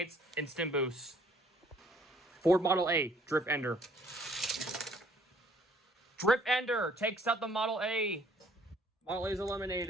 Instant Boost. Ford Model A, Drift Ender. Drift Ender takes out the Model A. Model A is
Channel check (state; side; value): normal; both; correlation 0.60